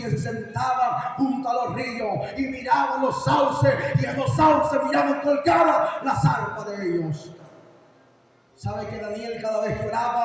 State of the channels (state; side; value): identical; both; correlation 1.00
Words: se sentaban junto a los ríos y miraban los sauces, y en los sauces miraban colgadas las arpas de ellos. ¿Sabe que Daniel cada vez que